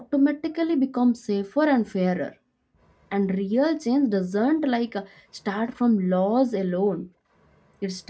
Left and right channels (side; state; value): both; identical; correlation 1.00